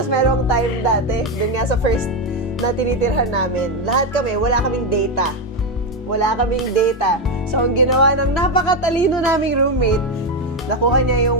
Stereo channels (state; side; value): normal; both; correlation 0.09